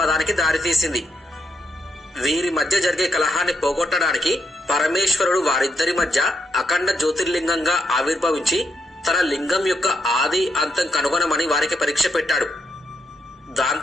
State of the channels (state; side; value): normal; both; correlation 0.79